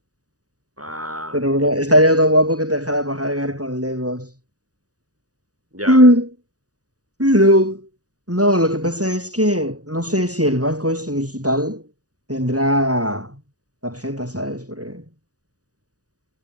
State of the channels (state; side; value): late; left; 0.67 ms